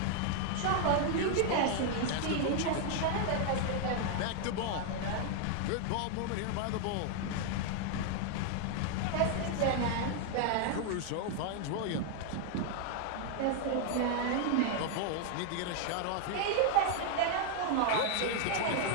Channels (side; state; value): both; different; correlation 0.00